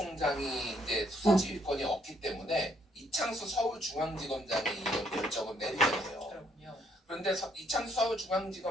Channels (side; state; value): both; normal; correlation 0.69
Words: 이제 수사지휘권이 없기 때문에 이창수 서울중앙지검장이 이런 결정을 내리겠네요. 그렇군요. 그런데 이창수